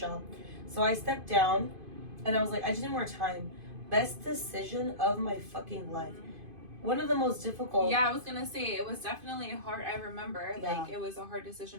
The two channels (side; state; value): left; late; 2.5 ms